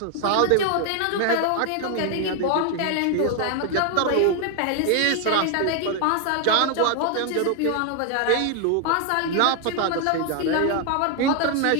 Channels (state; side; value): different; both; correlation 0.00